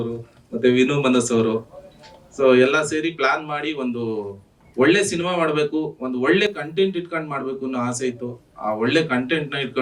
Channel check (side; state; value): both; identical; correlation 1.00